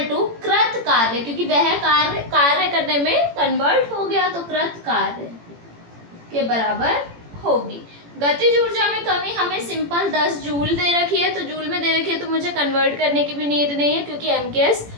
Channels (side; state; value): left; late; 18 ms